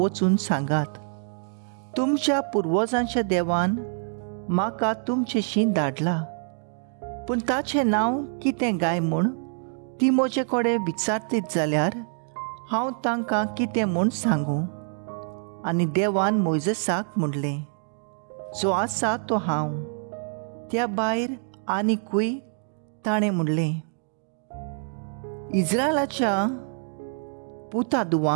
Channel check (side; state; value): left; silent; 61 dB below the other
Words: सांगात, तुमच्या पुर्वजांच्या देवान म्हाका तुमचेशी धाडला, पूण ताचें नांव कितें गाय म्हूण ती म्हजे कडेन विचारतीत जाल्यार हांव तांकां कितें म्हूण सांगूं. आनी देवान मोइजेसाक म्हणलें, जो आसा तो हांव. त्या भायर आनीकूय ताणें म्हणलें, इस्रायलाच्या पुता